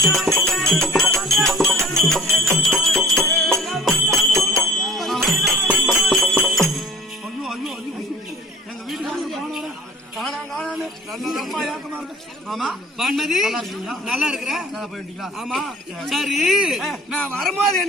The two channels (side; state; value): both; normal; correlation 0.47